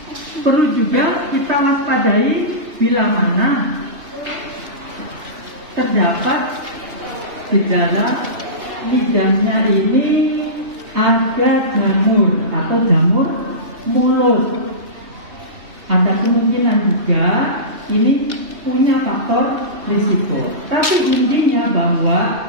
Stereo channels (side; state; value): left; late; 2.7 ms